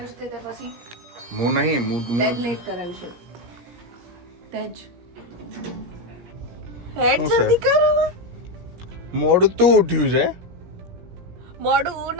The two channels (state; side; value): late; left; 17 ms